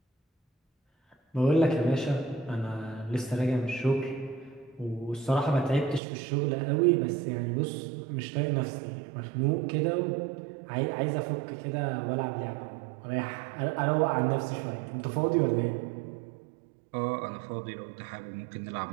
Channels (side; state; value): left; drops out; at 6.0 s